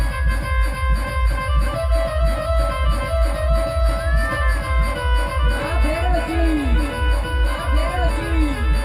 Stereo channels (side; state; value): both; identical; correlation 1.00